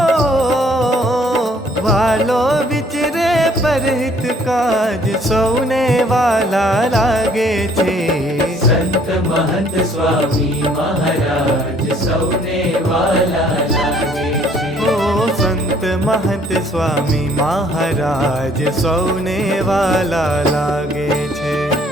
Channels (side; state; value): both; normal; correlation 0.61